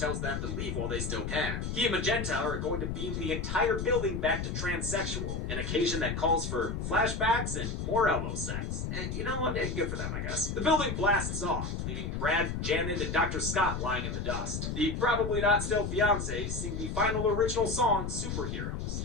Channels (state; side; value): noise; left; rumble, 3 dB below the sound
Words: them to leave while they still can. He and Magenta are going to beam the entire building back to transsexual, an occasion that calls for flashbacks and more elbow sex. And you know what? Good for them, I guess. The building blasts off, leaving Brad, Janet, and Dr. Scott lying in the dust. The probably not still fiancés sing the final original song, Superheroes,